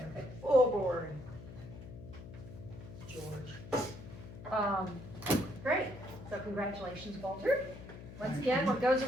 okay. Full board. George. Great, so congratulations, Walter. Once again, what goes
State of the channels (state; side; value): noise; left; hum, 13 dB below the sound